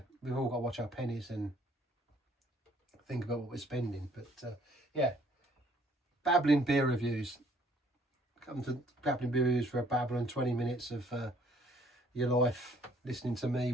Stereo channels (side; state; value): both; normal; correlation 0.61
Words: we've all got to watch our pennies and think about what we're spending. But yeah, Babbling beer reviews. Come to Babbling beer reviews for a babble and 20 minutes of your life listening to me